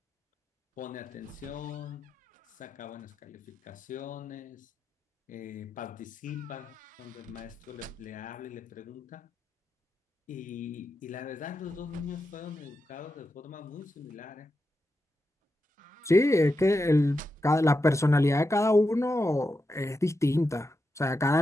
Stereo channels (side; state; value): both; normal; correlation 0.88